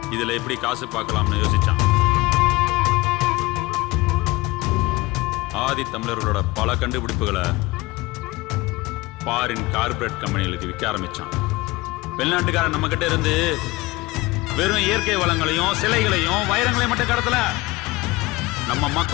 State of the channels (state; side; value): quieter; right; 21.3 dB